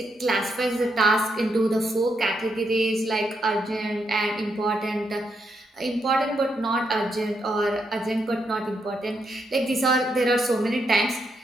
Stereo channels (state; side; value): normal; both; correlation 0.80